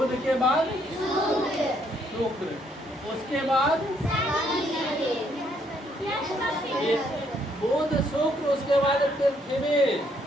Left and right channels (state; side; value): normal; both; correlation 0.70